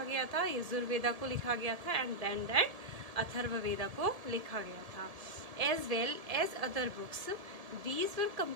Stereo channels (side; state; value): left; late; 1.7 ms